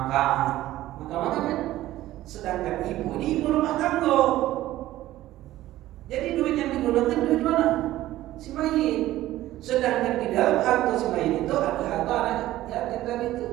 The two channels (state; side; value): quieter; left; 15.1 dB